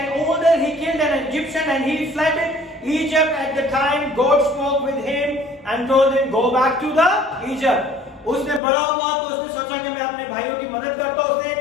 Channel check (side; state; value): right; drops out; at 8.6 s